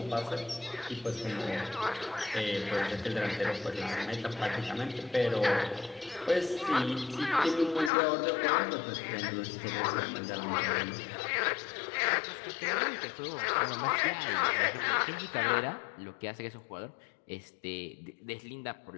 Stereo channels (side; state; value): right; drops out; at 7.9 s